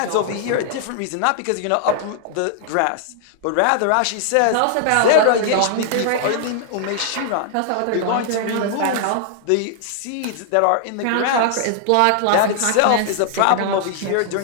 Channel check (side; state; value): both; different; correlation -0.01